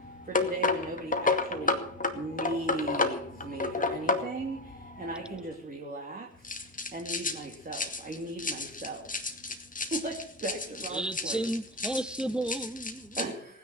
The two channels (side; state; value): both; normal; correlation 0.14